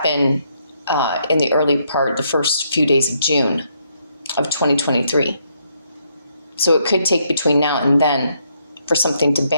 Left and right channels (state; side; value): inverted; both; correlation -0.74